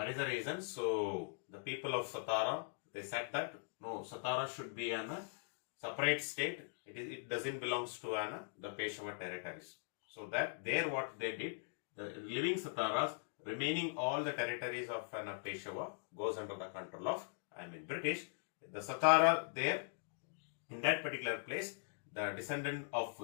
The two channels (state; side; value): silent; right; digital silence